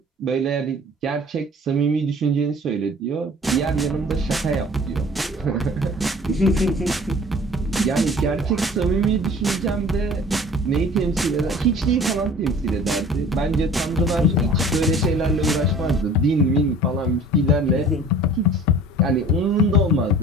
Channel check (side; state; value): both; normal; correlation 0.46